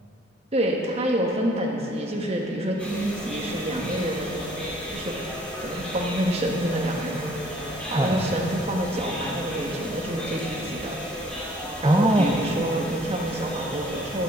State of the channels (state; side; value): normal; both; correlation 0.58